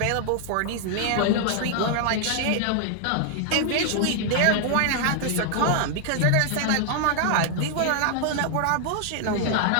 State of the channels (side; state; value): both; different; correlation 0.00